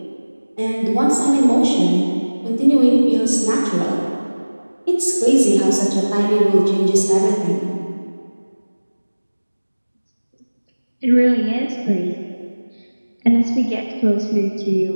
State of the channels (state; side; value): inverted; both; correlation -1.00